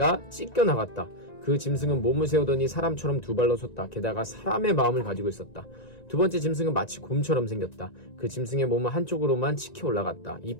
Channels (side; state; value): right; late; 1.9 ms